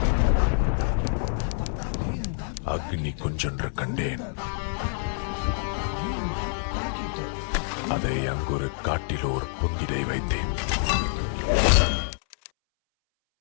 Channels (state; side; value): silent; right; 60 dB below the other